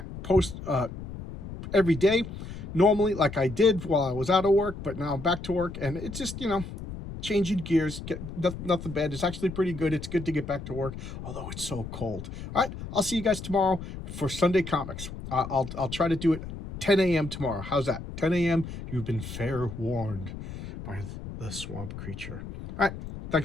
every day. Normally, like I did while I was out of work, but now I'm back to work, and it's just, changing gears. Nothing bad. It's actually pretty good. It's good to get back to work, although it's so cold. All right, I'll see you guys tomorrow for Sunday Comics. I'll try to do it 10 a.m. tomorrow. How's that? 10 a.m. You've been fair warned by the swamp creature. All right,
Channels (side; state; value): left; noise; rumble, 10 dB below the sound